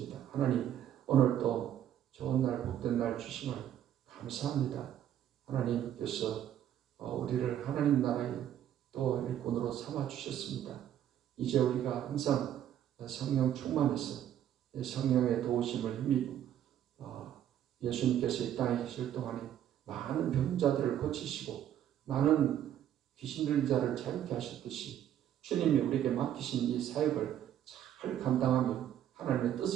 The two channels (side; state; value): left; quieter; 10.8 dB